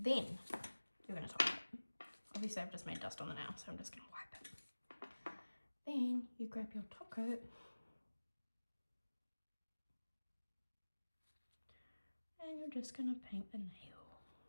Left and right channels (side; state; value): both; inverted; correlation -1.00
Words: you're going to top it. Obviously I've just made dust on the nail, so I'm just going to wipe it. Then you grab your top coat and you're just going to paint the nail.